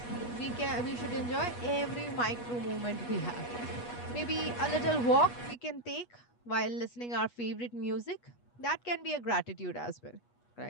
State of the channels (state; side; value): late; right; 8.3 ms